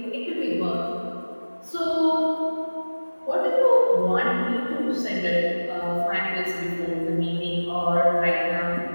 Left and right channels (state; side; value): inverted; both; correlation -1.00